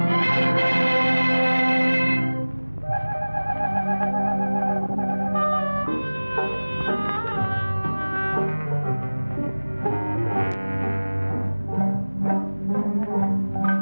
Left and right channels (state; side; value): inverted; both; correlation -1.00